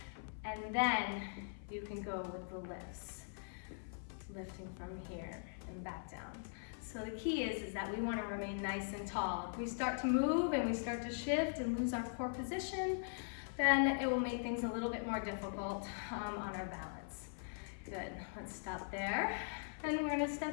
and then you can go with the lifts. Lifting from here and back down. So the key is that we wanna remain nice and tall. If we start to move and we start to shift and lose our core position, then it will make things a little bit more difficult on our balance. Good, let's stop there. And we're gonna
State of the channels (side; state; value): right; silent; 50 dB below the other